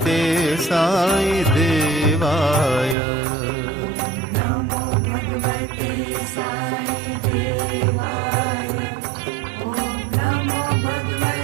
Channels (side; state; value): left; drops out; at 3.0 s